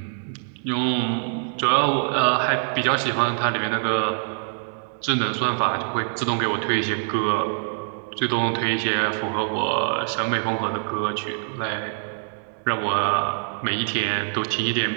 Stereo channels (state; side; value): silent; left; 62 dB below the other